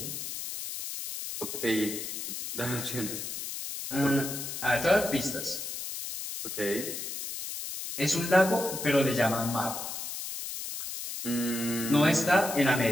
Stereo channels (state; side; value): noise; left; hiss, 6 dB below the sound